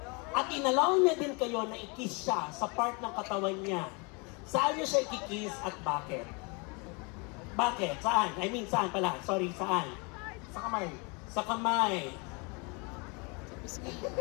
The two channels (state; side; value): quieter; right; 31.0 dB